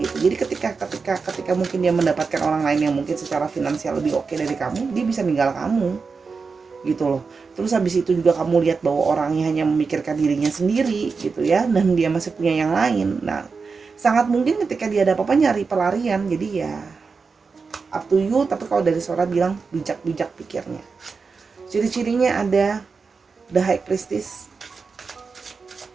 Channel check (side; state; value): left; quieter; 4.9 dB